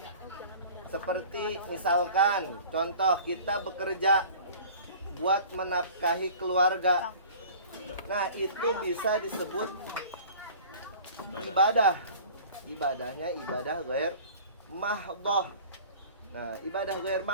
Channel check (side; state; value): both; inverted; correlation -0.44